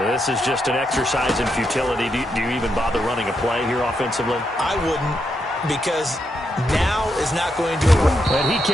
is just an exercise in futility. Do you even bother running a play here offensively? I wouldn't, because now is not going to... And he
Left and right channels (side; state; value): both; normal; correlation 0.82